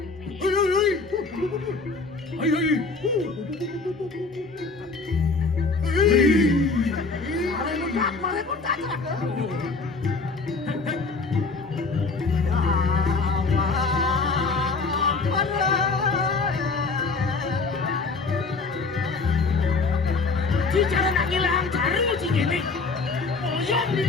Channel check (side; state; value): right; quieter; 4.1 dB